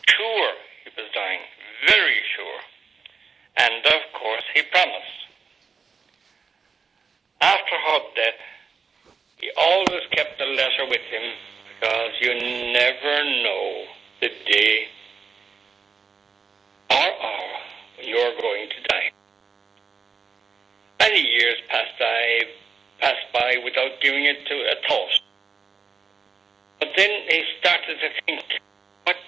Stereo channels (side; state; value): left; quieter; 5.4 dB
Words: sure he was dying, very sure. And of course he promised. After her death, he always kept the letter with him, because you never know the day or hour when you're going to die. Many years passed by without giving it to a thought. But then he started to think, what